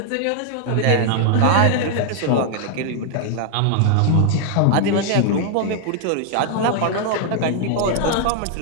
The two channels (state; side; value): different; both; correlation 0.00